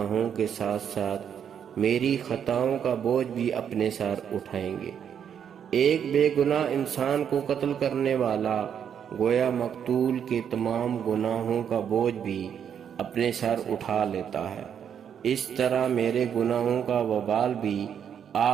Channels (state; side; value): quieter; left; 8.3 dB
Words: کے ساتھ ساتھ میری خطاؤں کا بوجھ بھی اپنے سر اٹھائیں گے۔ ایک بے گناہ انسان کو قتل کرنے والا گویا مقتول کے تمام گناہوں کا بوجھ بھی اپنے سر اٹھا لیتا ہے۔ اس طرح میرے گناہوں کا وبال بھی